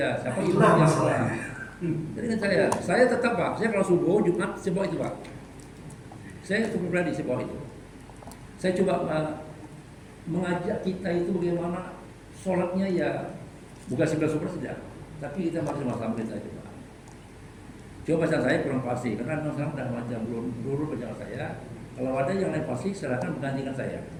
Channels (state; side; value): identical; both; correlation 1.00